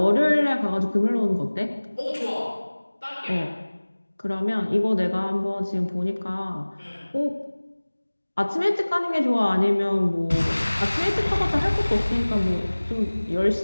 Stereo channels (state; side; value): inverted; both; correlation -1.00